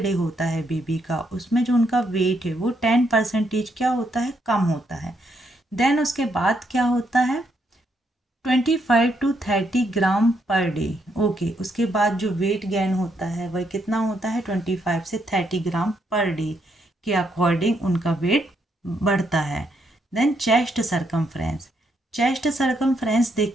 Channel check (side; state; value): both; normal; correlation 0.76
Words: होता है बेबी का, उसमें जो उनका वेट है वो 10% क्या होता है, कम होता है। देन उसके बाद क्या होता है, 25 to 30 gram per day. Okay, उसके बाद जो वेट गेन होता है वह कितना होता है, 25 से 30 ग्राम पर डे के अकॉर्डिंग उनका वेट बढ़ता है। Then chest circumference. Chest circumference